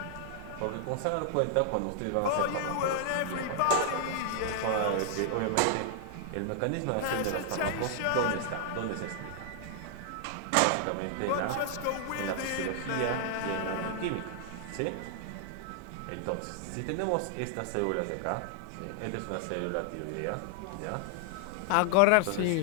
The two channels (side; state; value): both; different; correlation -0.01